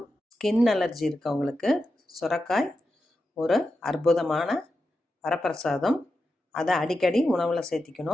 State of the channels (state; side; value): normal; both; correlation 0.89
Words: ஸ்கின் அலர்ஜி இருக்கவங்களுக்கு சுரக்காய் ஒரு அற்புதமான வரப்பிரசாதம். அதை அடிக்கடி உணவில்